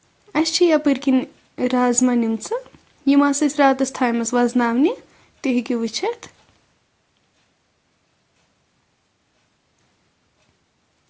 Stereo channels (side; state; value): both; identical; correlation 1.00